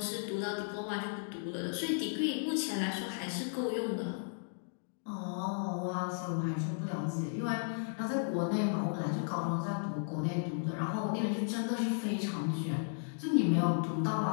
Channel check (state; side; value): silent; right; digital silence